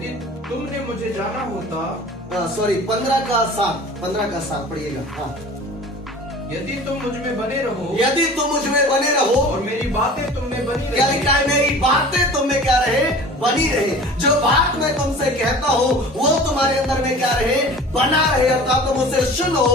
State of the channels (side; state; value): both; normal; correlation 0.42